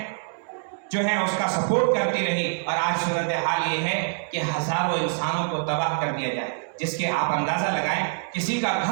جو ہیں اس کا سپورٹ کرتی رہی۔ اور آج صورتحال یہ ہے کہ ہزاروں انسانوں کو تباہ کر دیا جائے، جس کے آپ اندازہ لگائیں، کسی کا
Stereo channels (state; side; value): silent; left; 62 dB below the other